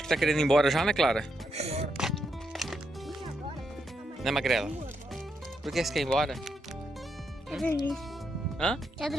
que tá querendo ir embora já, né, Clara? Né, Magrela? Por que você quer ir embora? Quer dormir. Hã? Quer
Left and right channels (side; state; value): both; normal; correlation 0.81